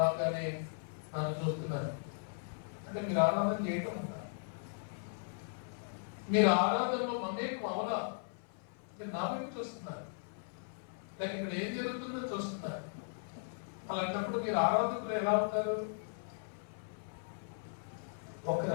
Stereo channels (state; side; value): silent; right; 53 dB below the other